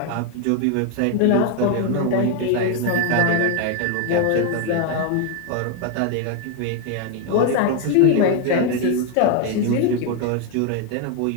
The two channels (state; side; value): different; both; correlation 0.01